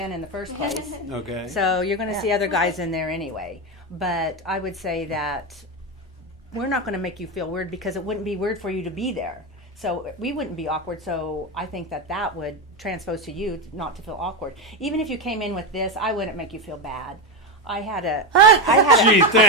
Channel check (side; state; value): both; normal; correlation 0.12